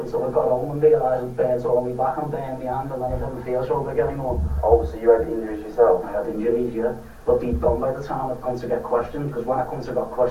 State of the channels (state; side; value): identical; both; correlation 1.00